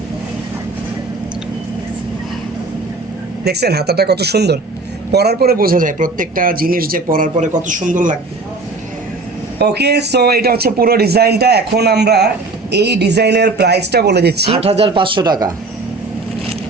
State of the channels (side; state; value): left; quieter; 3.4 dB